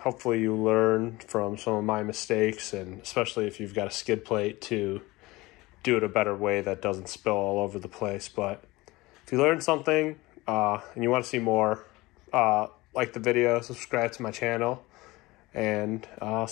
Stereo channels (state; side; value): quieter; right; 20.8 dB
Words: you learn from some of my mistakes, and especially if you've got a skid plate, to do it a better way that doesn't spill all over the place. But if you learned something and you want to see more, like the video, subscribe to my channel, and I'll